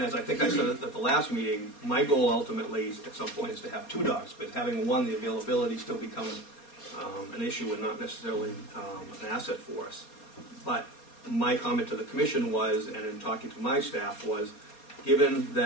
as I think I said at the last meeting, my goal ultimately at some point is to have 2 dogs, but having one, the availability still becomes an issue and not necessarily an asset for us. But my comment to the commission was, and in talking to my staff, was given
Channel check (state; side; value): late; right; 4.2 ms